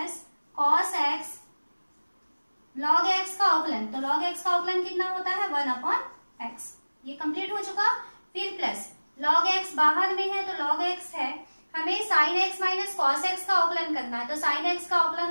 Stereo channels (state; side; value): inverted; both; correlation -1.00